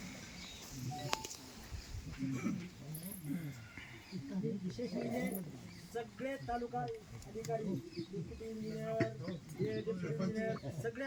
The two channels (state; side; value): identical; both; correlation 1.00